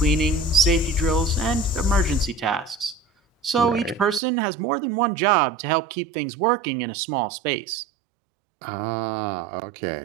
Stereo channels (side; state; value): left; drops out; at 4.2 s